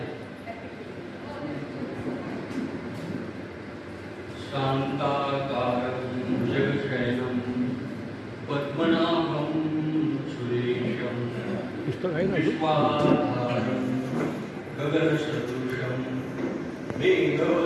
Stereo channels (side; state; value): both; identical; correlation 1.00